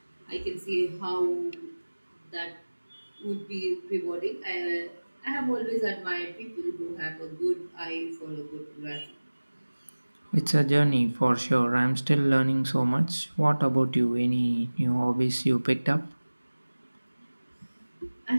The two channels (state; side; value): inverted; both; correlation -1.00